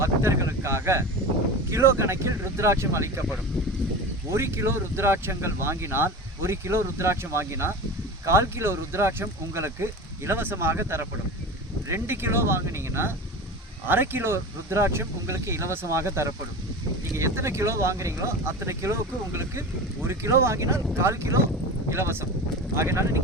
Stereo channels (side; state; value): both; normal; correlation 0.30